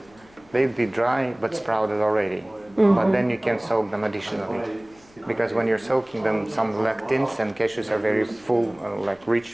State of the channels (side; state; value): left; noise; hum, 29 dB below the sound